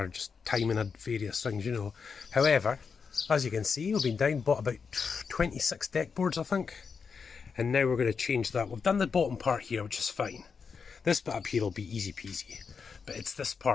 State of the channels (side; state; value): right; quieter; 5.7 dB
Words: just timing and various things, you know. However, as you can see, we've been down, bought about 26 deck boards, I think. And now we're going to change that. We've done the bottom part here, which is fine. This bit up here will be easy peasy. But it's this